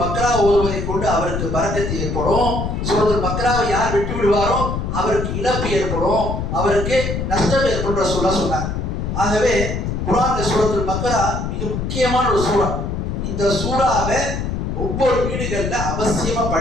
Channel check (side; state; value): left; noise; rumble, 3 dB below the sound